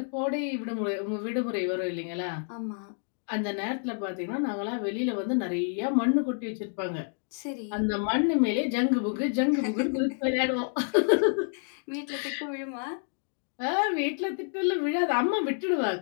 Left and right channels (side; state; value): right; silent; 57 dB below the other